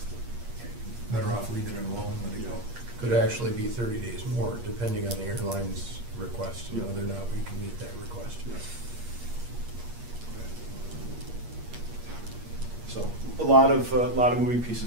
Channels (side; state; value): left; late; 8.5 ms